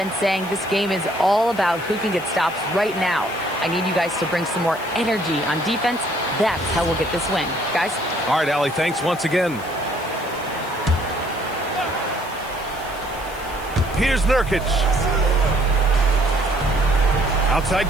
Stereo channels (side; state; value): left; noise; hiss, 19 dB below the sound